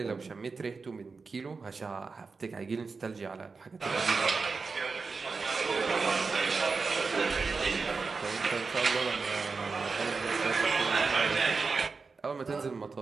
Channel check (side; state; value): left; quieter; 4.5 dB